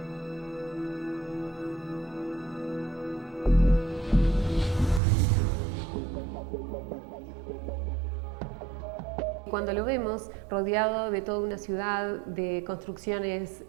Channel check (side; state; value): left; drops out; at 5.0 s